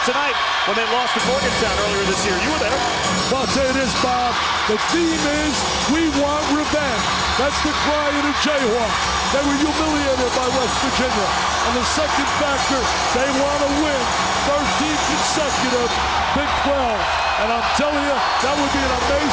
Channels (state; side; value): identical; both; correlation 1.00